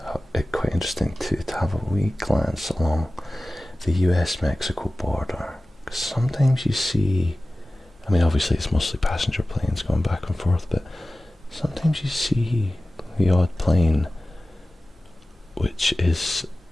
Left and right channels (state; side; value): normal; both; correlation 0.97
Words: quite interesting to have a wee glance along the US-Mexico border. 'Cause sometimes you see, I mean obviously it's mostly passenger planes going back and forth, but sometimes you see the odd plane which is